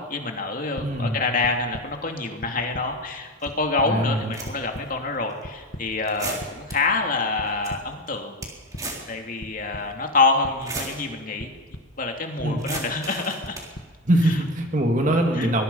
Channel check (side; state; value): both; normal; correlation 0.17